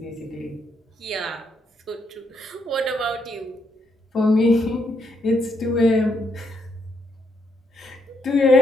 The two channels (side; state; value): both; normal; correlation 0.76